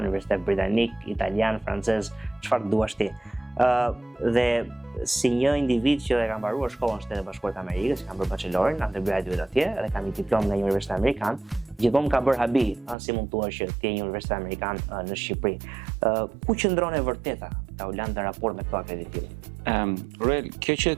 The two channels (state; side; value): drops out; left; at 13.0 s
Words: britanik, italian, francez, çfarë duash ti. Dhe si një individ që e ka mbaruar shkollën në Shtetet Bashkuara të Amerikës, kam bërë bachelorin, undergraduate atje, dhe kam një diplomë nga një universitet amerikan, gjithmonë ka bërë habi, si mund thua që ti je një universitet amerikan në Shqipëri. Ku qëndron e vërteta Taulant në raport me këto akreditime? Ruel, kjo që